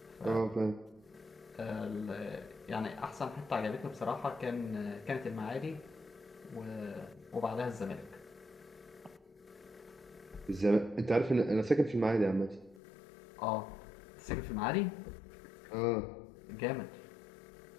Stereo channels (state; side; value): drops out; right; at 12.8 s